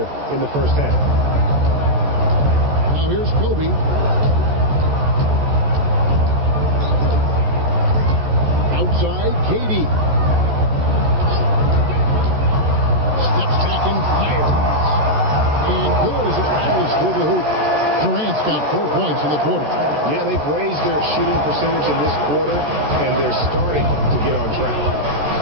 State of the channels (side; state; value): left; late; 14 ms